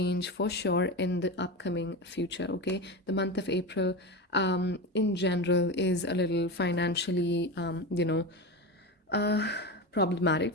for sure in the upcoming future. Okay, the month of April in general is a little financially uh,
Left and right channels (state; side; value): normal; both; correlation 0.21